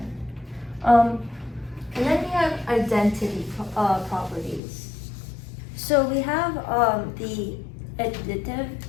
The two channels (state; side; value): drops out; right; at 4.6 s